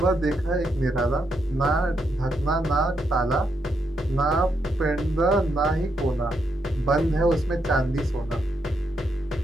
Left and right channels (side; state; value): both; normal; correlation 0.80